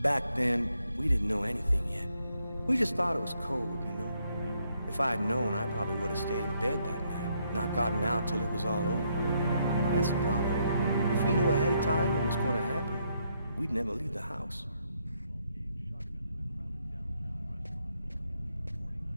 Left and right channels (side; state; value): both; inverted; correlation -0.75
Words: Back then, we didn't know anything yet. We just thought it was cold, you know? If I had known, I probably would have stayed in bed that night, not gotten out till it was all over. That's the problem. If we knew ahead of time what was going to happen, we'd never leave the house.